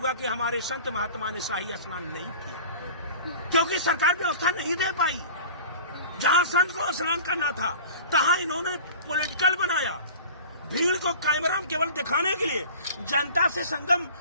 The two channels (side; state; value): both; inverted; correlation -0.41